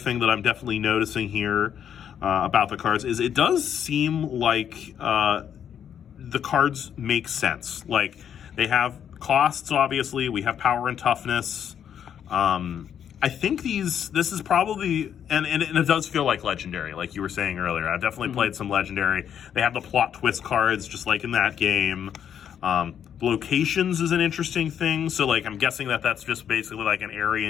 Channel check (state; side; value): quieter; right; 8.9 dB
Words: that I'm definitely noticing here about the cards is it does seem like the cards make sense. Like, they have costs, obviously. We have power and toughness. I think this is probably, and it does feel like Legendary, like you were saying earlier. I've definitely played some Legendary. They have the plot twist cards, just like in that game. Locations is an interesting thing. So, like, I'm guessing that's just basically like an